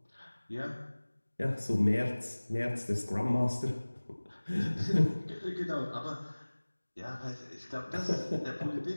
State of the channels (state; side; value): inverted; both; correlation -1.00